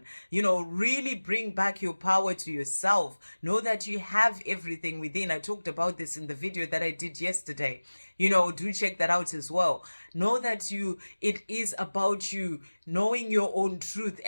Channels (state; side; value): inverted; both; correlation -1.00